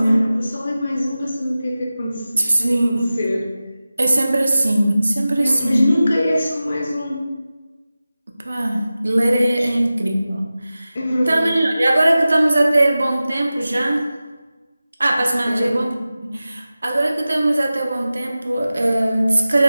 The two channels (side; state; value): both; inverted; correlation -0.95